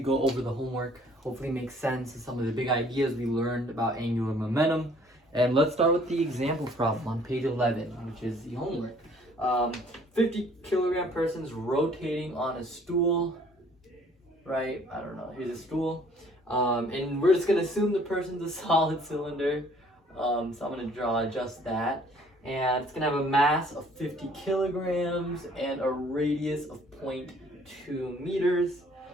over the homework, hopefully make sense of some of the big ideas we learned about angular momentum. And let's start with the example problem on page 11, which is the homework. 50 kilogram person's rotating on a stool, right? I don't know, here's a stool. And we're just going to assume the person's a solid cylinder. So I'm going to draw just that. And it's going to have a mass of 50 kilograms and a radius of 0.2 meters.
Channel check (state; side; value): normal; both; correlation 0.58